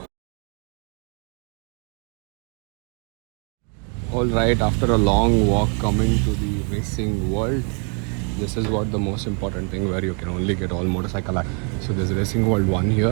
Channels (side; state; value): left; quieter; 39.3 dB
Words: Alright, after a long walk coming to the racing world, this is what the most important thing where you can only get all motorcycle act. So there's Racing World 1